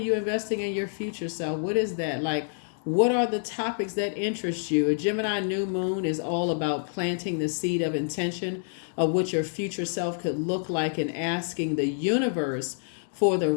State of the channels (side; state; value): right; silent; digital silence